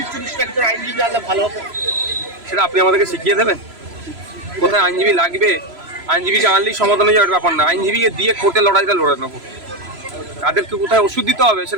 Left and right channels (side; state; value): left; late; 3.0 ms